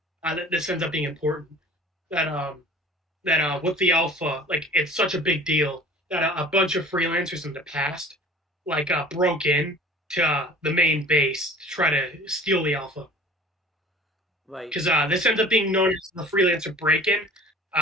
That this ends up being important. That with the alpha, like it's such a big deal that a bunch of freelancers in the past, broke in to the main base to try to steal the alpha. Right. Because this ends up being known as the freelancer break-in.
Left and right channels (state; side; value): normal; both; correlation 0.45